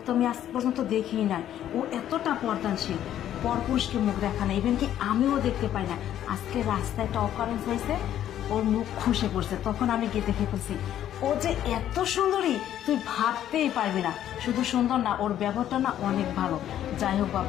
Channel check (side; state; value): right; quieter; 11.3 dB